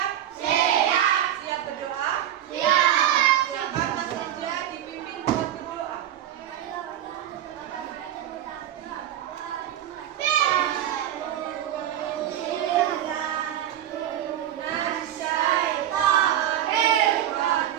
Siap. Siap berdoa? Siap. Silakan Mas Eja dipimpin buat berdoa.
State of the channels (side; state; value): left; quieter; 11.4 dB